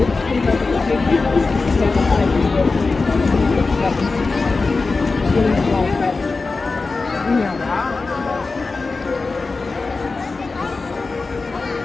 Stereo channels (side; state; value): right; quieter; 3.9 dB